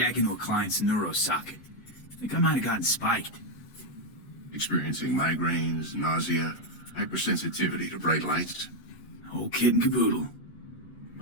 into a client's neuro socket. Think I might have gotten spiked. Experiencing migraines, nausea, hypersensitivity to bright lights? Whole kit and caboodle.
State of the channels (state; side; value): late; right; 8.0 ms